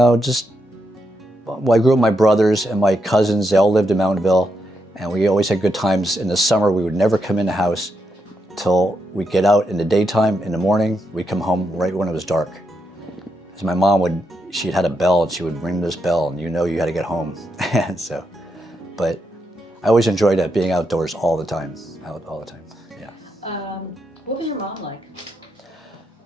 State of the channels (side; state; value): both; normal; correlation 0.82